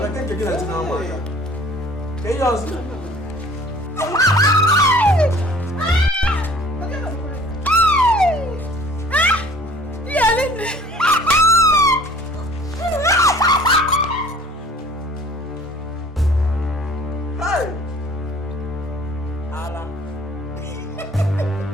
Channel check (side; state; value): both; normal; correlation 0.52